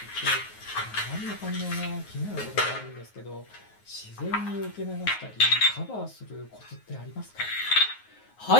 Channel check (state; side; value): late; right; 9.5 ms